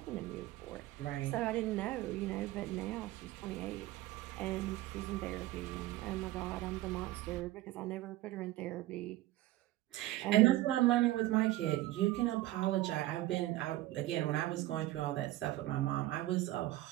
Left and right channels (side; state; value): left; quieter; 16.4 dB